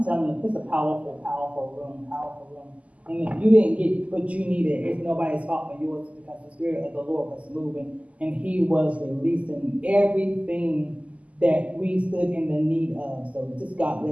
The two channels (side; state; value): left; late; 0.069 ms